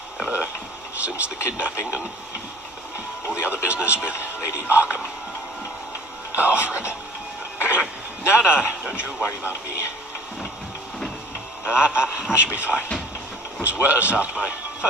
Ever since the kidnapping and all the other business with Lady Arkham. Alfred. No, don't you worry about me. I should be fine. It was worse after my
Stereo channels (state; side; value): normal; both; correlation 0.49